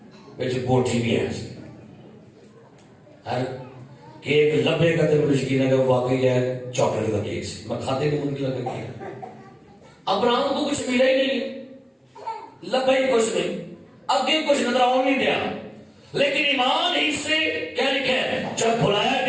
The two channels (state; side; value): identical; both; correlation 1.00